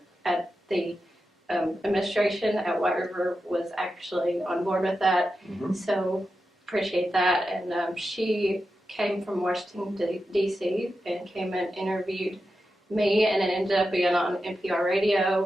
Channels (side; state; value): both; normal; correlation 0.90